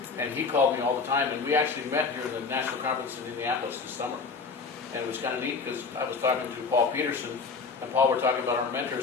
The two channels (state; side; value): quieter; right; 4.7 dB